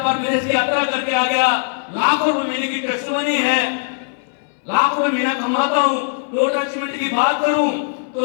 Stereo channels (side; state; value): right; silent; 63 dB below the other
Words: पर विदेश की यात्रा करके आ गया, लाखों रुपए महीने की टेस्टमनी है, लाखों रुपए महीना कमाता हूँ। टोटल अचीवमेंट की बात करूं तो